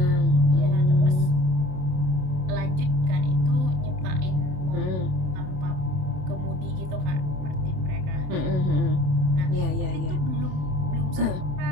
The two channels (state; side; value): late; left; 27 ms